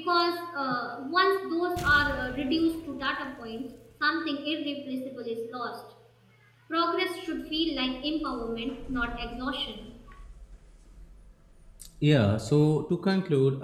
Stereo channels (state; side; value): identical; both; correlation 1.00